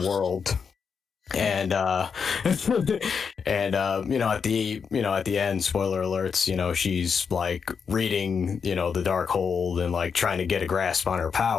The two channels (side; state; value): right; quieter; 6.1 dB